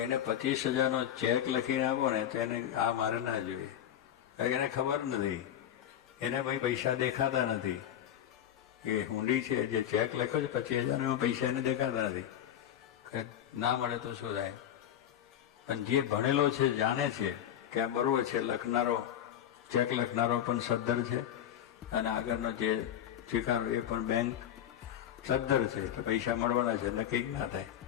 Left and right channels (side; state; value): right; quieter; 10.6 dB